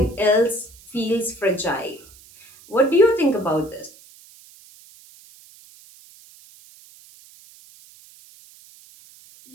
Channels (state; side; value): noise; right; hiss, 24 dB below the sound